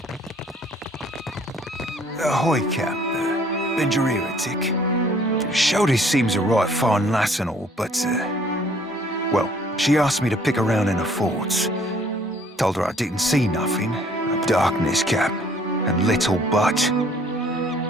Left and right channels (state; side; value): normal; both; correlation 0.59